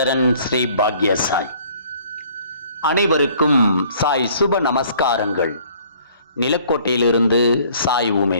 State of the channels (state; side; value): inverted; both; correlation -0.57